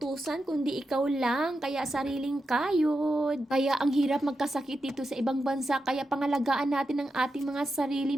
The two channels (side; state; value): both; normal; correlation 0.88